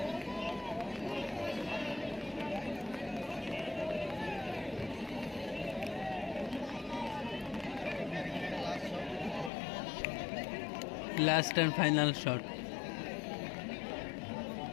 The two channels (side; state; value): right; drops out; at 9.5 s